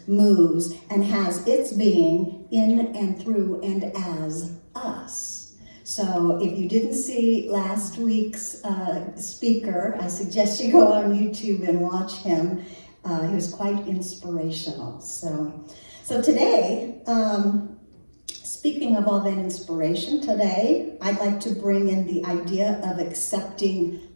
moves, and has its being in and through and as us. So if you didn't see last week's speaker, I suggest you go on YouTube and watch him. He was quite inspirational. So today, speaking of all that inspiration, today I'd like to bring in the idea of accepting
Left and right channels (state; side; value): inverted; both; correlation -1.00